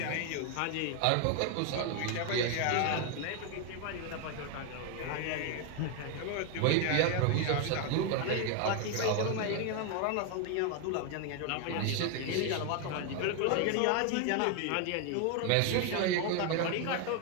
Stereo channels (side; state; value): both; different; correlation 0.01